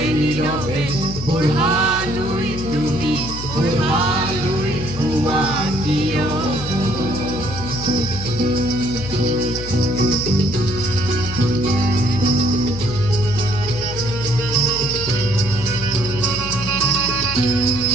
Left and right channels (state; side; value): noise; left; hum, 9 dB below the sound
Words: নীরবে ওরহালুই তুমি ওরহালুই তুয়া কিয়